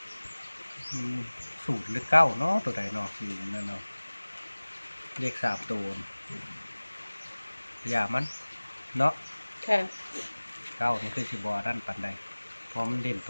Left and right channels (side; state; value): both; inverted; correlation -1.00